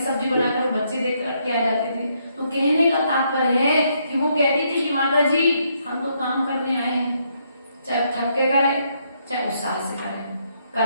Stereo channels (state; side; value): inverted; both; correlation -0.74